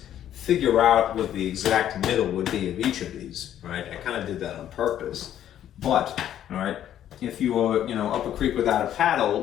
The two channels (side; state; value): right; quieter; 11.0 dB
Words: figure out what the exact middle would be of each of these, right? I kind of did that on purpose. But, all right, if you were, up a creek without a paddle,